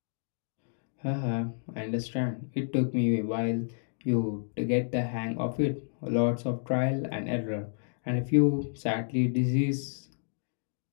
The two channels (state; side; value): silent; right; digital silence